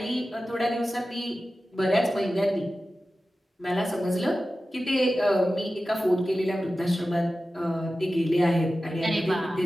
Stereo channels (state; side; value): normal; both; correlation 0.94